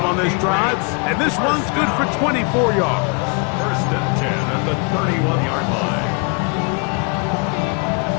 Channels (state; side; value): quieter; right; 33.7 dB